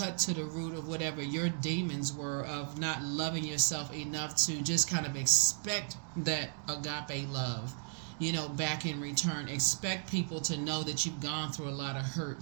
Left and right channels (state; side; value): silent; left; 54 dB below the other